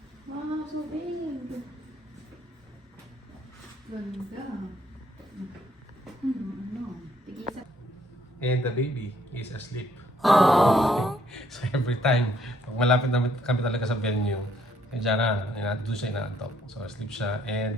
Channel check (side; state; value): both; normal; correlation 0.67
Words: Wow, so big. Ganda. Tigisa. And the baby is asleep. Aww. So every time, pag malapit na kami talaga sa venue, diyan na, doon siya inaantok. So asleep siya and